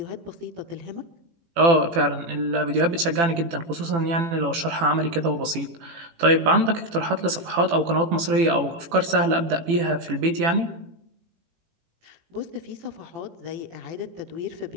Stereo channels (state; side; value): late; left; 18 ms